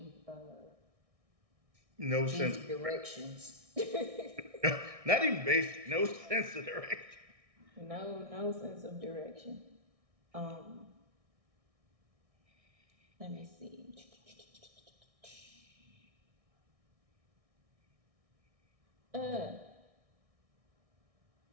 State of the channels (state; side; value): late; left; 1.6 ms